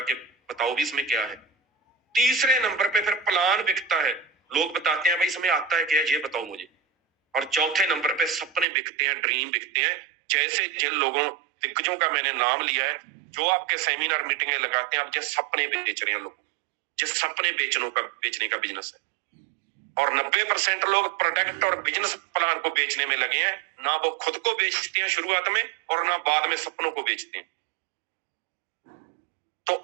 के बताओ भी इसमें क्या है। तीसरे नंबर पे फिर प्लान बिकता है, लोग बताते हैं भाई इसमें आता है क्या, ये बताओ मुझे। और चौथे नंबर पे सपने बिकते हैं, ड्रीम बिकते हैं। जैसे जिन लोगों दिग्गजों का मैंने नाम लिया है, जो आपके सेमिनार मीटिंगें लगाते हैं, आप जिस सपने बेच रहे हैं लोग, जिस सपने बेचने का बिजनेस है। और 90% लोग प्रोडक्ट और बिजनेस प्लान को बेचने में लगे हैं। ना वो खुद को बेचते हैं शुरुआत में, और ना बाद में सपनों को बेचते हैं। तो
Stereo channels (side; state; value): left; drops out; at 8.7 s